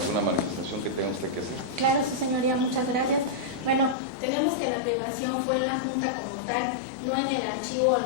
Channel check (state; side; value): drops out; right; at 4.0 s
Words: manifestación que tenga usted que hacer? Claro, su señoría, muchas gracias. Bueno, tenemos que la privación fue en la Junta como tal, no en el archivo o en